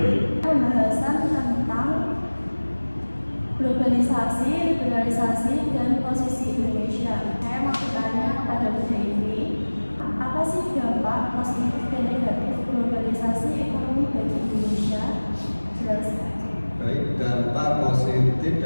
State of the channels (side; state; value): both; inverted; correlation -1.00